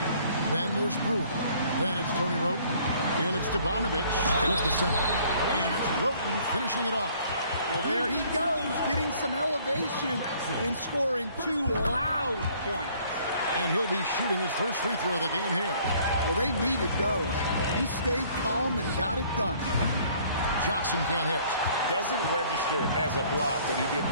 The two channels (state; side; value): inverted; both; correlation -0.58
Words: Then there's Brewer. Then it's Tony Wroten. And it's Stevanovic with the center. And it's Wroten finishing it off. Well, there he goes, getting some elevation and scoring 2 loud points. And he'll be shooting his first free throw of the game here. Well, they needed those. He stayed calm and got it done. Johnson can't hit. Doesn't register as a block, but he did